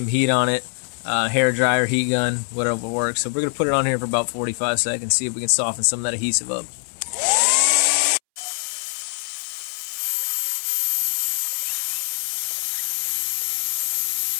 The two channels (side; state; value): right; silent; 62 dB below the other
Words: heat on it. Hair dryer, heat gun, whatever works. So we're going to put it on here for about 45 seconds, see if we can soften some of that adhesive up.